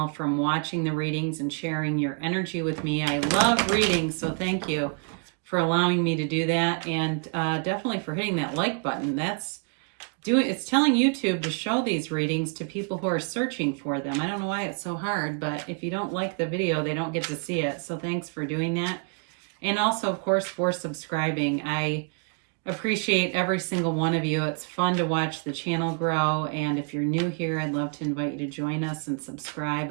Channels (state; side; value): quieter; left; 39.6 dB